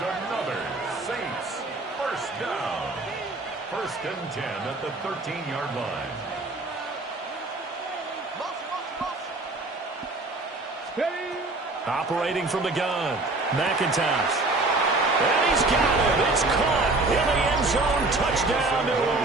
another Saints first down. 1st and 10 at the 13-yard line. Operating from the gun, McIntosh. And he's got it. It's caught in the end zone. Touchdown, New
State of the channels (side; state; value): left; quieter; 3.1 dB